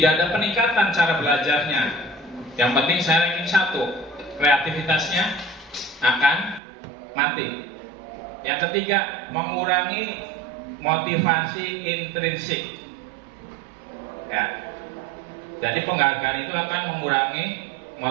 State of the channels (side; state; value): left; drops out; at 6.6 s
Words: ada peningkatan cara belajarnya. Yang penting saya ranking 1, kreativitasnya akan mati. Yang ketiga, mengurangi motivasi intrinsik. Ya. Jadi penghargaan itu akan mengurangi